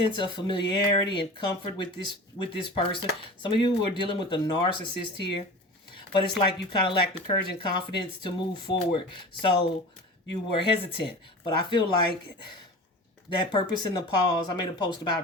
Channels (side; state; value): both; normal; correlation 0.35